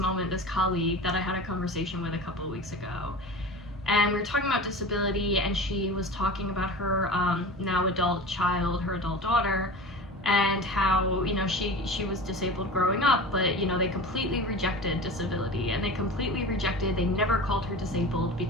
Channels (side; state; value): both; normal; correlation 0.33